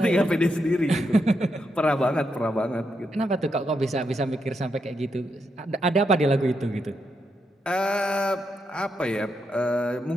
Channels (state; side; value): normal; both; correlation 0.82